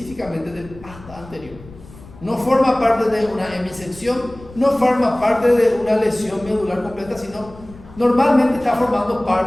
del asta anterior. No forma parte de una hemisección, no forma parte de una lesión medular completa, sino normalmente está formando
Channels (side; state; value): left; noise; rumble, 20 dB below the sound